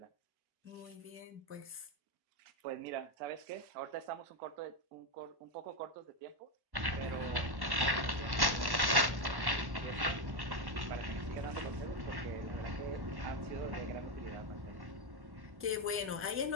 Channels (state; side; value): late; left; 1.1 ms